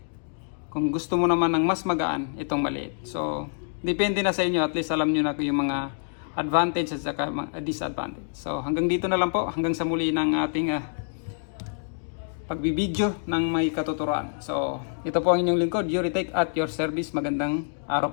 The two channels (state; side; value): silent; right; digital silence